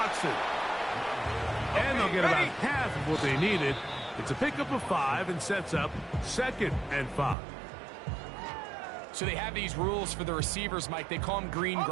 And they'll get about half of what they needed. It's a pickup of 5 and sets up 2nd and 5. So they have these rules for the receivers, Mike. They call them green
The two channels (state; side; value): drops out; left; at 7.4 s